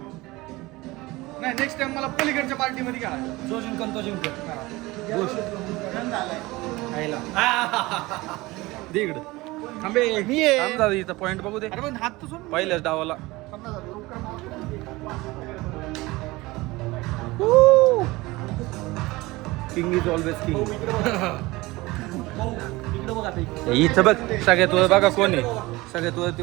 नाही नेक्स्ट टाइम मला पलीकडच्या पार्टी मध्ये काय जो जिंकन तो जिंकतो दे इकडं थांबे मी आहे. थांब दादा इथं पॉइंट बघू दे अरे पण हात तर सोड पहिल्याच डावाला किंग इज ऑलवेज किंग इथं बघ सगळ्यात वर बघा कोण आहे सगळ्यात वरती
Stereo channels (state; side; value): quieter; left; 21.0 dB